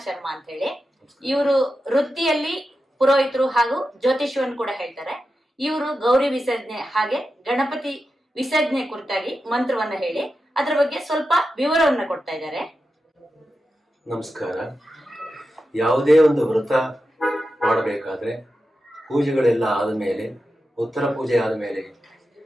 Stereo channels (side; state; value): both; normal; correlation 0.90